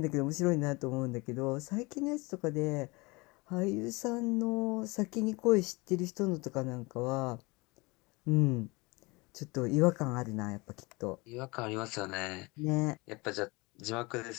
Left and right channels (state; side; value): quieter; right; 25.4 dB